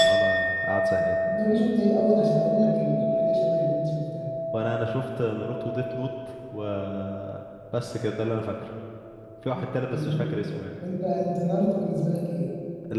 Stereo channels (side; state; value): both; identical; correlation 1.00